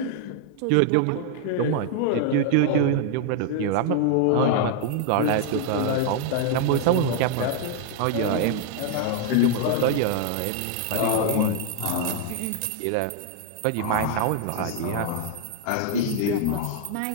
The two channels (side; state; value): both; different; correlation 0.00